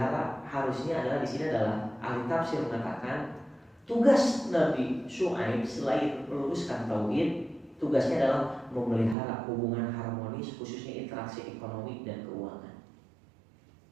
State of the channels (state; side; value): drops out; left; at 9.2 s